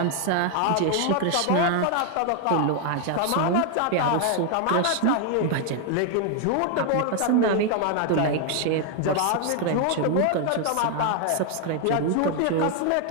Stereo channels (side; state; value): both; different; correlation 0.00